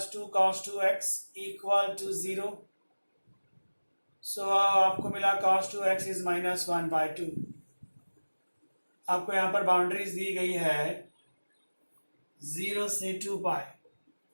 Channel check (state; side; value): inverted; both; correlation -1.00